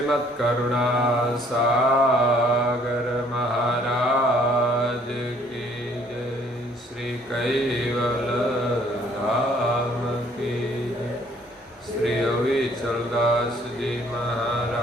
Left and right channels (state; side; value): normal; both; correlation 0.61